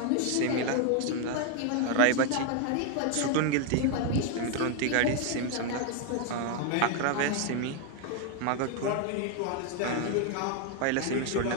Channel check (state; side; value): different; both; correlation 0.00